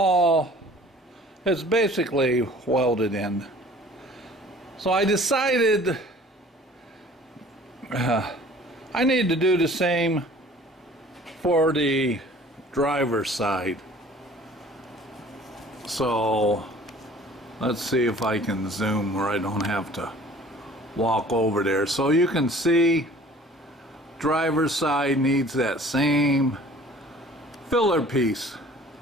it's basically welded in. So I decided I need to do the same for the driver's side. So let's see if I can zoom where I don't have to walk over there. So you can see driver's side needs that same filler piece.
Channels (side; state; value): both; normal; correlation 0.49